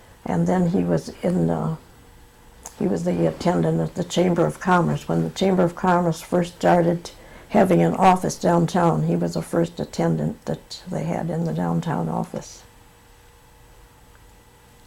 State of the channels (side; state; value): both; identical; correlation 1.00